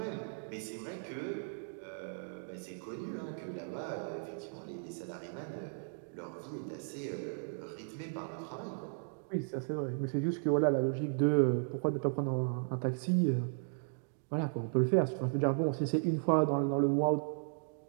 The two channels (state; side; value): silent; left; digital silence